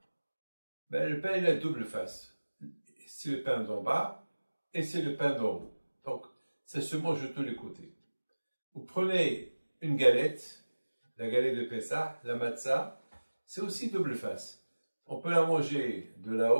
le pain il a double face. C'est le pain d'en bas et c'est le pain d'en haut. Donc, ça se mange de tous les côtés. Vous prenez une galette, la galette de Pessah, la matzah, c'est aussi double face. On peut la manger de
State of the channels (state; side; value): inverted; both; correlation -1.00